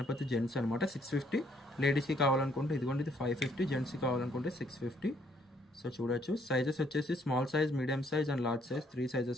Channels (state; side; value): normal; both; correlation 0.67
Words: జెంట్స్ అనమాట. 650 లేడీస్కి కావాలనుకుంటే ఇదిగోండి, ఇది 550. జెంట్స్కి కావాలనుకుంటే 650. సో చూడొచ్చు. సైజెస్ వచ్చేసి small size, medium size and large size 3